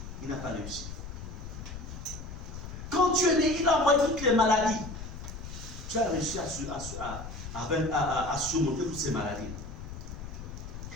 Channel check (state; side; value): noise; left; rumble, 10 dB below the sound